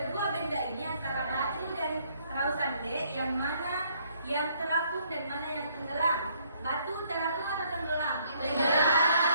benda ini antara batu dan perahu sande yang mana yang terapung dan mana yang tenggelam. Batu terapung atau tenggelam?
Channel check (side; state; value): both; inverted; correlation -0.66